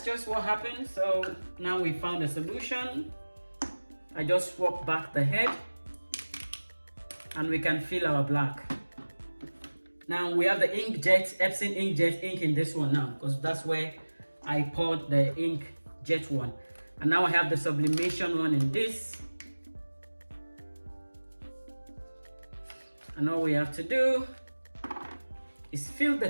just what happened. So now we found a solution. I just swap back the head and we can fill our black. Now we have the Inkjet, Epson Inkjet ink in this one now, because that's where I poured the Inkjet one. And now I have the sublimation one in this. And all we have to do is fill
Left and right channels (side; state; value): both; inverted; correlation -1.00